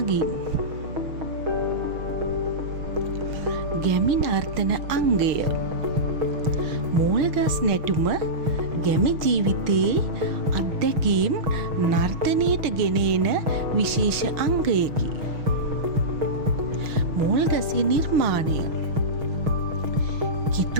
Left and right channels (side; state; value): left; late; 6.4 ms